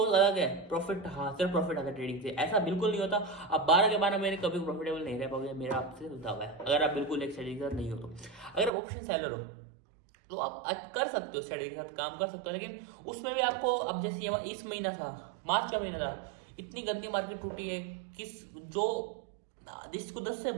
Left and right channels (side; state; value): left; drops out; at 8.7 s